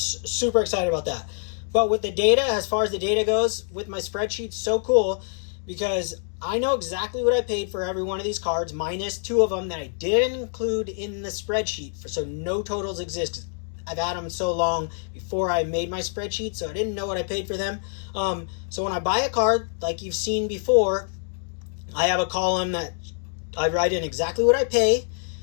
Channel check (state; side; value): silent; right; digital silence